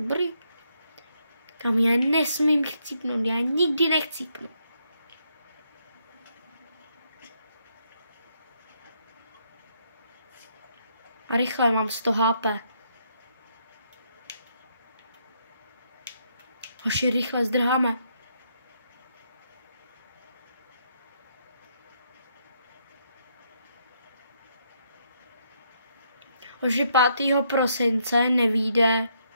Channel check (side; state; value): both; inverted; correlation -0.74